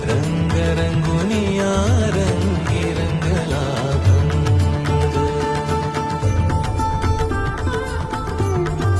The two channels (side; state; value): both; identical; correlation 1.00